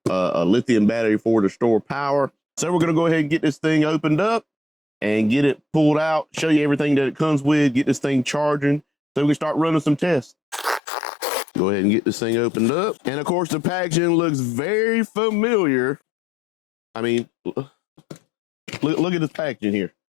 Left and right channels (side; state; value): right; drops out; at 10.8 s